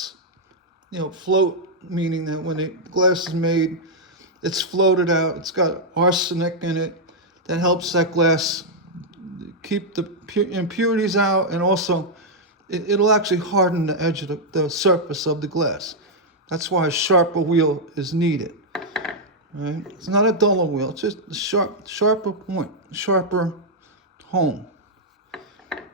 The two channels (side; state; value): both; normal; correlation -0.04